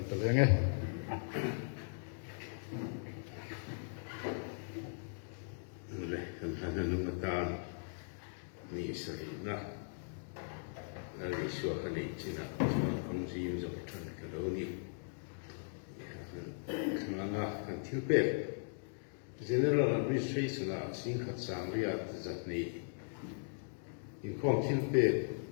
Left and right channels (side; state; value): right; silent; digital silence